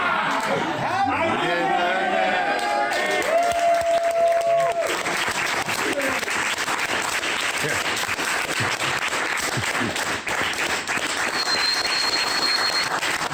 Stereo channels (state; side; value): identical; both; correlation 1.00